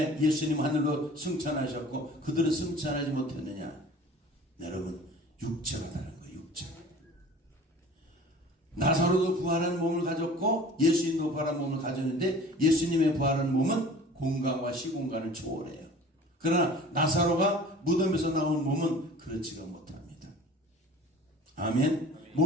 예수님 하늘로 승천하셨고 그들은 승천하지 못했느냐? 여러분, 육체가 다른 거예요. 육체. 나사로도 부활한 몸을 가졌고 예수님도 부활한 몸을 가졌는데 예수님의 부활한 몸은 공간과 시공간을 초월해요. 그러나 나사로가 무덤에서 나온 몸은 그렇지가 못합니다. 아멘.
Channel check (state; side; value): normal; both; correlation 0.44